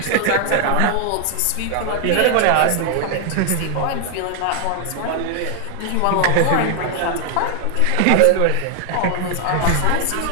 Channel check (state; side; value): different; both; correlation 0.00